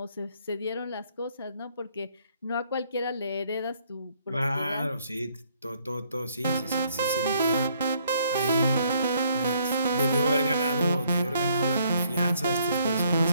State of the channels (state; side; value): inverted; both; correlation -0.68